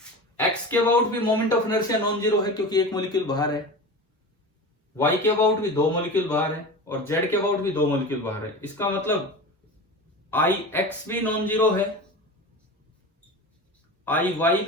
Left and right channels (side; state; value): both; normal; correlation 0.30